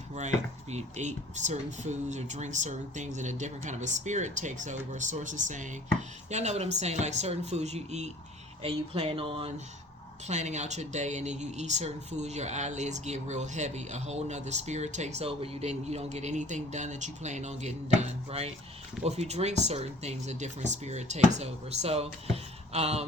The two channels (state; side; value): normal; both; correlation 0.50